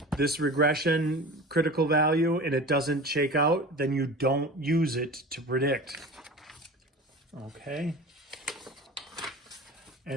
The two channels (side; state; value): both; normal; correlation 0.35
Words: this regression critical value and it doesn't shake out, then you don't use it to predict. Okay.